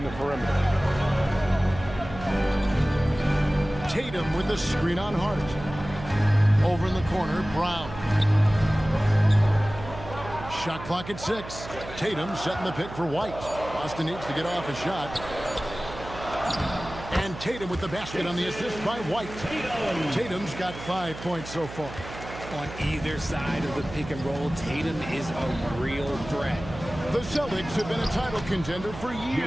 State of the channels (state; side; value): noise; right; hum, 12 dB below the sound